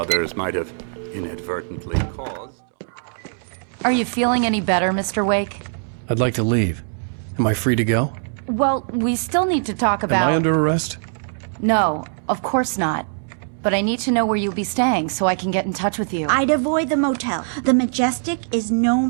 might have inadvertently caused. Are you feeling any better, Mr. Wake? I'd like to leave. Am I free to go? Well, we still need to talk about... Am I under arrest? No, of course not. But I need to know where you'll be staying so I can get in touch with you. I'd avoid the motel. The Majestic is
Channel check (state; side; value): silent; left; digital silence